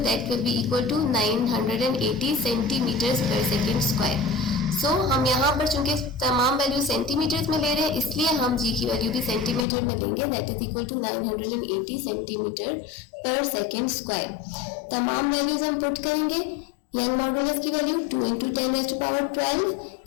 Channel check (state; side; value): drops out; right; at 9.7 s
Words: will be equal to 980 centimetres per second square. So हम यहाँ पर चूंकि तमाम वैल्यू सेंटीमीटर्स में ले रहे हैं इसलिए हम जी की वैल्यू भी सेंटीमीटर में लेंगे, that is equal to 980 centimetre per second square. तमाम वैल्यूज हम पुट करेंगे। यंग मॉडुलस की वैल्यू 2 × 10⁻12,